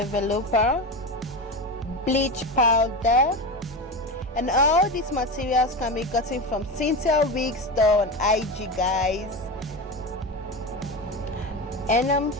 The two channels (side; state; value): both; normal; correlation 0.21